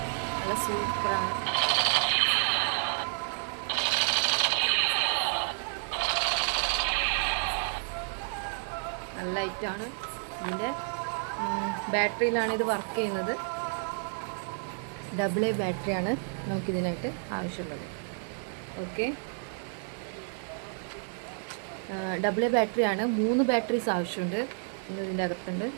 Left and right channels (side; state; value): left; silent; 56 dB below the other